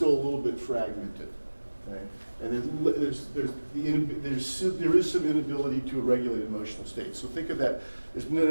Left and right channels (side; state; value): both; inverted; correlation -1.00